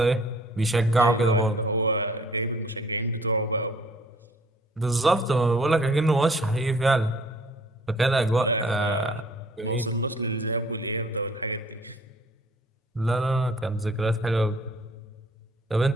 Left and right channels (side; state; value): both; normal; correlation 0.55